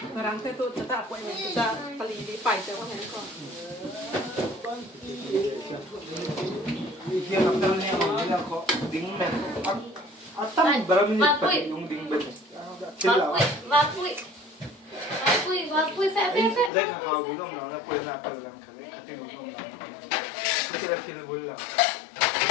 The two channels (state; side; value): drops out; right; at 16.7 s